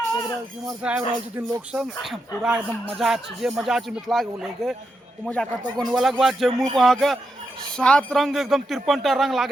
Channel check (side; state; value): both; normal; correlation 0.85